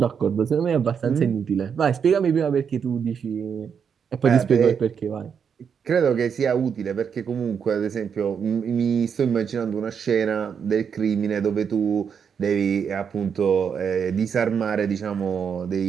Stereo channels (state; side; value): quieter; left; 7.0 dB